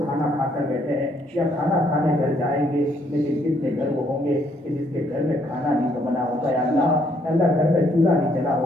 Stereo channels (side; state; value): both; normal; correlation 0.69